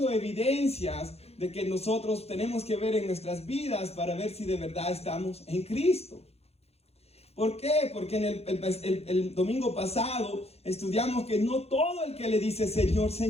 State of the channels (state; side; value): late; right; 0.30 ms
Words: evidencias de que nosotros tenemos que ver en nuestras vidas para ver si de verdad estamos en Cristo. ¿Por qué? Porque en el domingo pasado estudiamos que no todo el que le dice Señor,